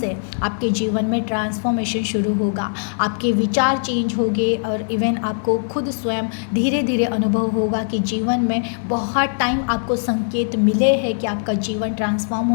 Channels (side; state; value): right; silent; digital silence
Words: आपके जीवन में ट्रांसफॉर्मेशन शुरू होगा, आपके विचार चेंज होंगे और इवन आपको खुद स्वयं धीरे धीरे अनुभव होगा कि जीवन में बहुत टाइम आपको संकेत मिले हैं कि आपका जीवन ट्रांसफॉर्म